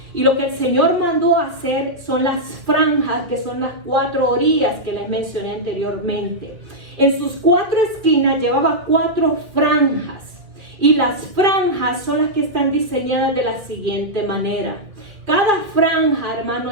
Y lo que el Señor mandó hacer son las franjas, que son las 4 orillas que les mencioné anteriormente. En sus 4 esquinas llevaba 4 franjas. Y las franjas son las que están diseñadas de la siguiente manera. Cada franja,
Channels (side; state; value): left; late; 2.4 ms